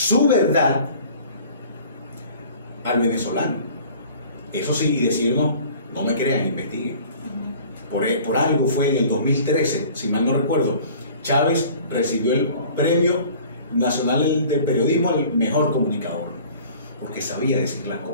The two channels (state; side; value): inverted; both; correlation -0.48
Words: verdad al venezolano. Eso sí, y decirnos, no me crean, investiguen. Por algo fue en el 2013, si mal no recuerdo, Chávez recibió el Premio Nacional del Periodismo al mejor comunicador, porque sabía decir las